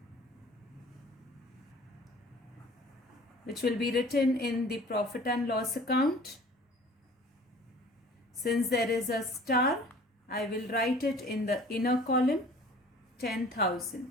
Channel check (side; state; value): both; normal; correlation 0.48